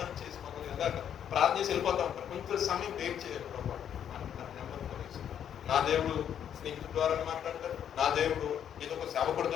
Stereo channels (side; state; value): right; quieter; 9.2 dB